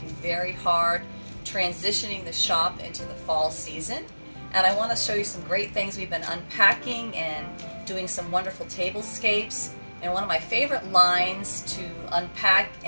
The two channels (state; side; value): inverted; both; correlation -1.00